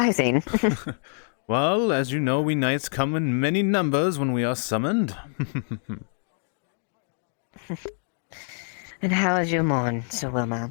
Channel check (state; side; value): silent; right; 58 dB below the other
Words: Well, as you know, we knights come in many numbers when we are summoned. And how is your morn, Sir